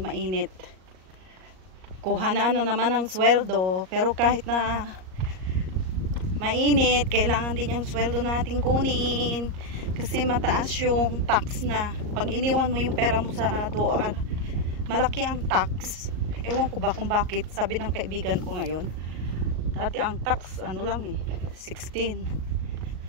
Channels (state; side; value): late; left; 38 ms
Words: Kuha na naman ang sweldo. Pero kahit na mainit, kailangan din yung sweldo natin kunin. Kasi mataas yung tax na. Pag iniwan mo yung pera mo sa DOAR, malaki ang tax. Ewan ko ba kung bakit. Sabi ng kaibigan ko ngayon. Dati ang tax, ano lang 16.